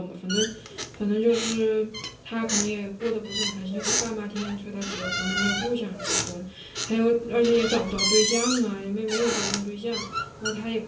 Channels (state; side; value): identical; both; correlation 1.00